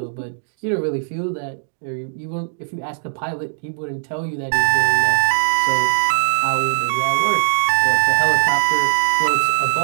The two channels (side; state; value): left; silent; digital silence